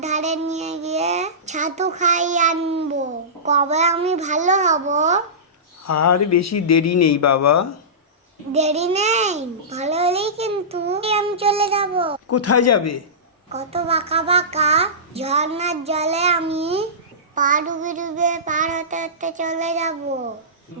ধারে নিয়ে গিয়ে ছাতু খাইয়ে আনবো। কবে আমি ভালো হব? আর বেশি দেরি নেই বাবা। দেরি নেই, ভালো হলেই কিন্তু আমি চলে যাব। কোথায় যাবে? কত বাঁকা বাঁকা ঝর্ণার জলে আমি পা ডুবে ডুবে পার হতে হতে চলে যাব।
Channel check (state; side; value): normal; both; correlation -0.20